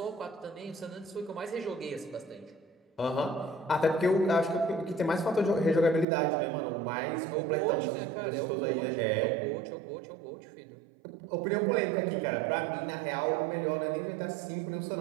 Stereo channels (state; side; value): drops out; left; at 6.1 s